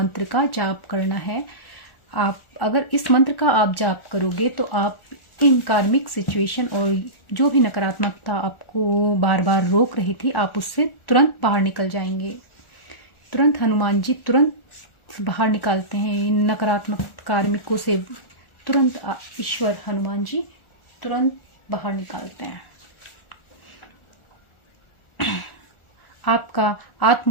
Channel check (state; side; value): late; right; 1.4 ms